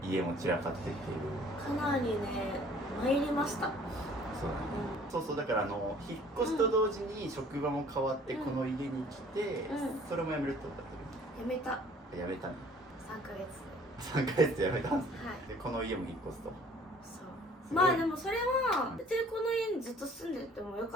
家も散らかってっていうかなりね参りました。そうだね、そうそう、だから引っ越しと同時に職場も変わってこの家に来て、それも辞めるってことだったやめた。辞めたね。3ヶ月3ヶ月で辞めたんですね、はい、でこの家も引っ越すと。そうまあでもそれは別にこの家にずっと住んでてもよ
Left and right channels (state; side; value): normal; both; correlation 0.54